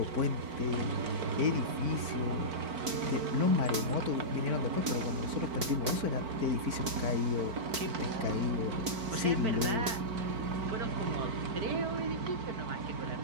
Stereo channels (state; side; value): late; left; 4.5 ms